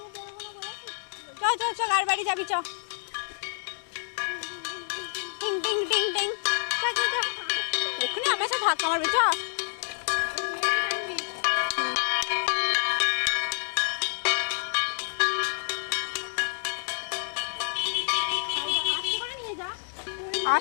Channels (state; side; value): silent; right; digital silence